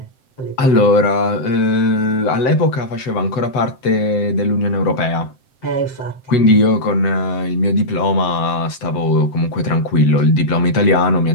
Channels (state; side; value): late; right; 7.7 ms